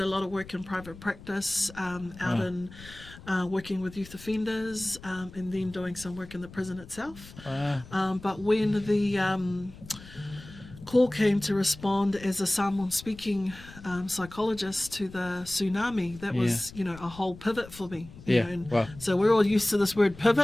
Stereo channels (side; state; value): left; noise; rumble, 18 dB below the sound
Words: a lot of work in private practice, out in working with youth offenders, and then doing some work in the prison itself. But when the call came to respond as a Samoan-speaking psychologist to the tsunami, that was, a whole pivot for me. So we're all used to this word